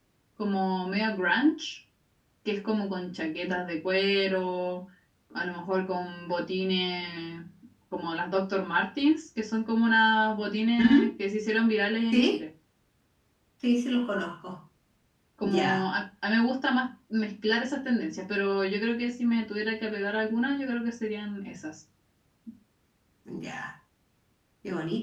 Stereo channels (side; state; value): both; identical; correlation 1.00